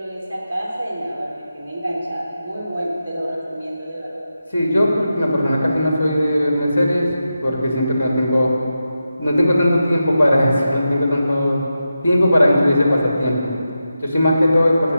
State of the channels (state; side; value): inverted; both; correlation -0.90